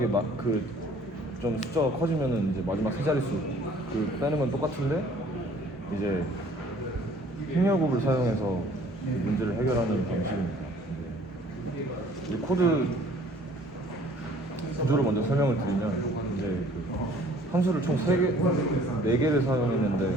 좀 숫자가 커지면은 이제 마지막 세 자릿수 빼는 건 똑같은데 이제 행렬곱을 사용해서 문제를 해결하는 방식입니다. 이 코드 구조를 먼저 설명을 드리면 이제 그 함수를 총 4개를 사용했는데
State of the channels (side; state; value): both; normal; correlation 0.55